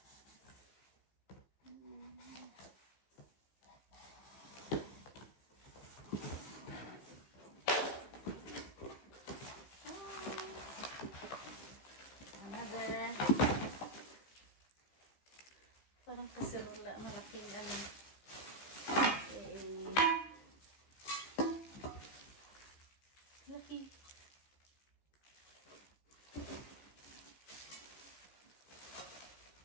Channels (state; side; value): late; right; 15 ms